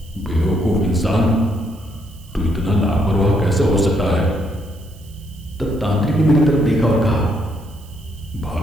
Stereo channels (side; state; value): right; noise; hiss, 26 dB below the sound